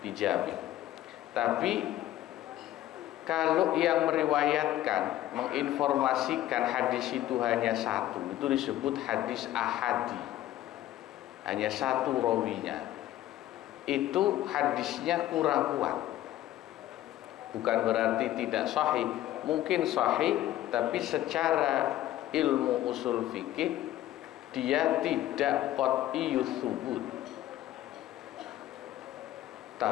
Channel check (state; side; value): quieter; right; 13.9 dB